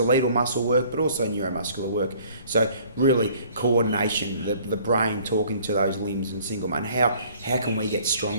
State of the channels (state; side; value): inverted; both; correlation -0.55